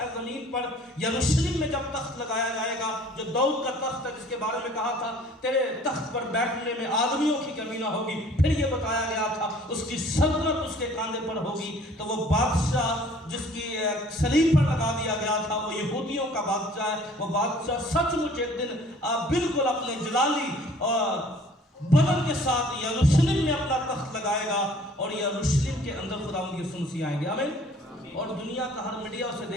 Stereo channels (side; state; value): both; normal; correlation 0.53